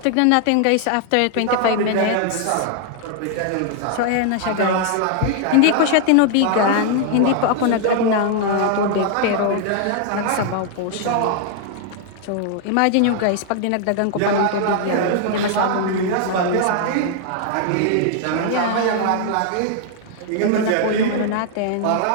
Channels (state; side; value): different; both; correlation 0.00